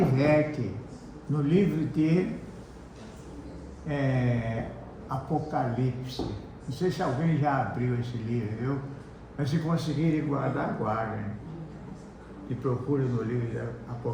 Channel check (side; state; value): both; identical; correlation 1.00